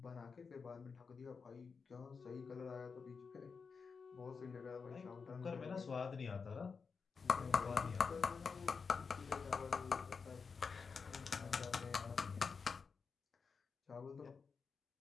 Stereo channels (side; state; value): right; quieter; 5.3 dB